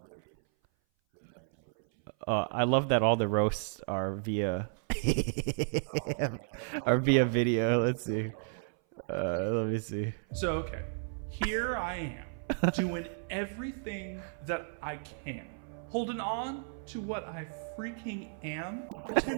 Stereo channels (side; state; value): left; silent; 56 dB below the other